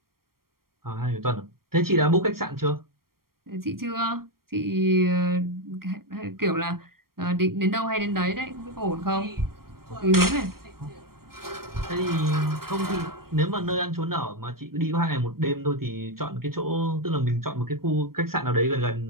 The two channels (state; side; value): late; left; 0.93 ms